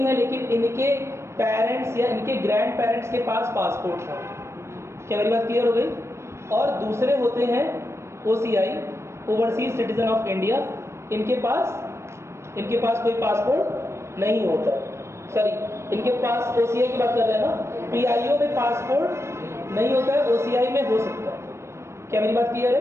है, लेकिन इनके पेरेंट्स या इनके ग्रैंड पेरेंट्स के पास पासपोर्ट था। क्या मेरी बात क्लियर हो गई? और दूसरे होते हैं OCI, overseas citizen of India. इनके पास कोई पासपोर्ट नहीं होता। सॉरी, इनके पास, OCI की बात कर रहे हैं ना, PIO में पासपोर्ट नहीं होता है, OCI में हो सकता है। क्या मेरी बात क्लियर है?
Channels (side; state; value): left; late; 0.13 ms